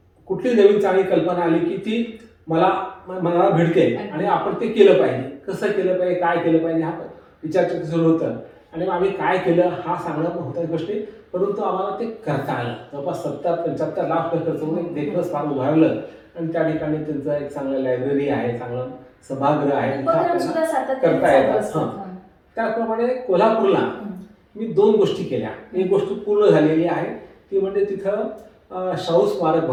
कुठली नवीन चांगली कल्पना आली की ती मनाला भिडते आणि आपण ते केलं पाहिजे. कसं केलं पाहिजे, काय केलं पाहिजे, हा विचारचर्चा सुरू होतं. आणि आम्ही काय केलं हा सांगणं होत्या गोष्टी, परंतु आम्हाला ते करता आलं. जवळपास 70-75 लाख खर्च करून एक देखणं स्मारक उभारलं आणि त्या ठिकाणी त्यांचं एक चांगलं लायब्ररी आहे, चांगलं सभागृह आहे, करता येतात. त्याचप्रमाणे कोल्हापूरला मी 2 गोष्टी केल्या. एक गोष्ट पूर्ण झालेली आहे ती म्हणजे तिथं शाहू स्मारक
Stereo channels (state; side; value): identical; both; correlation 1.00